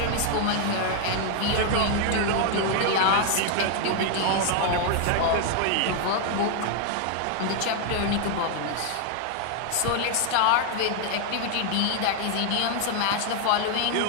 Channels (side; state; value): both; different; correlation 0.00